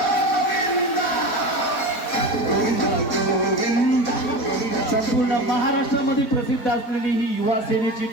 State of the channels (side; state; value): right; late; 4.5 ms